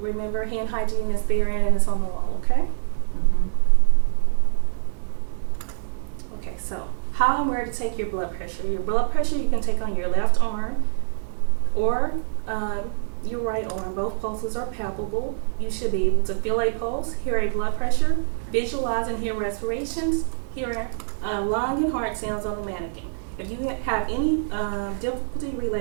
hand hygiene is there and it's on the wall, okay? Mhm. Okay, so how and where to take your blood pressure. Your blood pressure you can take on your left arm or your right arm. Both pulses are palpable. You should be able to feel a pulse, hear a blood pressure, visualize and hear respirations, hear lung and heart sounds on the mannequin. If you have any difficulty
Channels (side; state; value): left; silent; digital silence